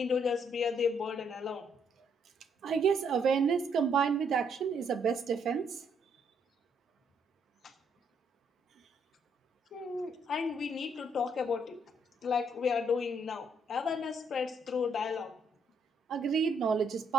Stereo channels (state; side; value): normal; both; correlation 0.71